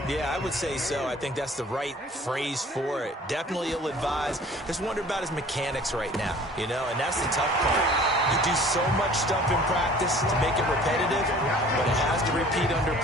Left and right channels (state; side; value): normal; both; correlation 0.49